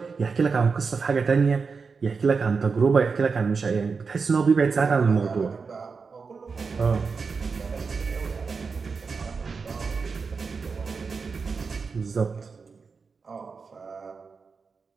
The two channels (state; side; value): quieter; left; 5.0 dB